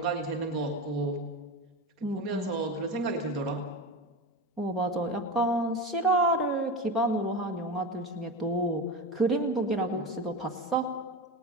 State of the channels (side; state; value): both; normal; correlation 0.23